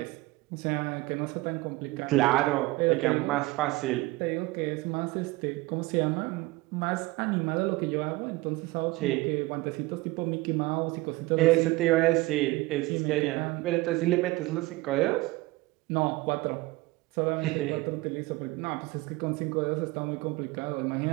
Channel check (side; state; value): left; quieter; 21.1 dB